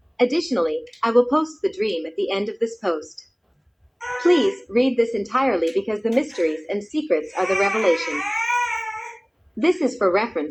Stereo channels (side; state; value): both; identical; correlation 1.00